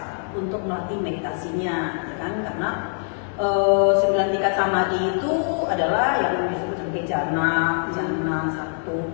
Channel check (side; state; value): right; silent; 62 dB below the other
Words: untuk melatih meditasinya, ya kan? Karena 9 tingkat samadhi itu adalah yang disebut sebagai jana 1,